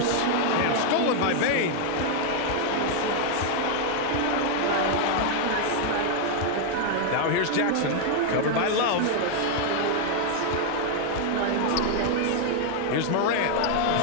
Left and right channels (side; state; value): both; different; correlation 0.00